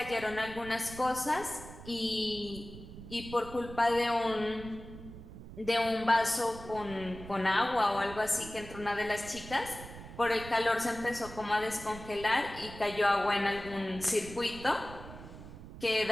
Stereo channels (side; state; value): right; noise; rumble, 14 dB below the sound